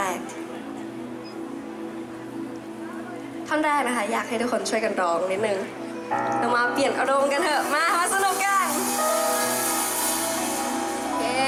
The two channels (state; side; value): identical; both; correlation 1.00